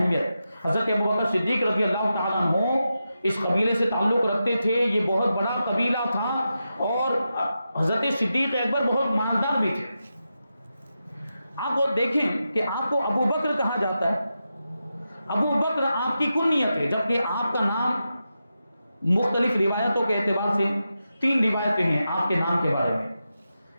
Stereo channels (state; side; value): inverted; both; correlation -0.89